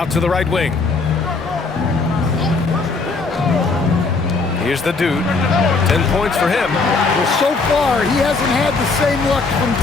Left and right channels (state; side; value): quieter; right; 4.0 dB